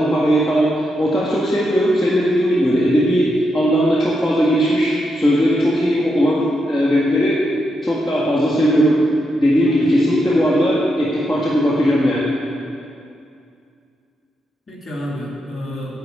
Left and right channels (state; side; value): normal; both; correlation 0.83